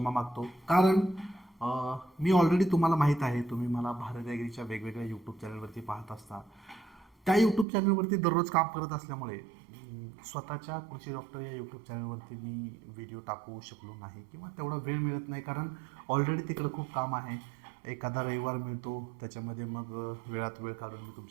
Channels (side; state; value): left; drops out; at 7.7 s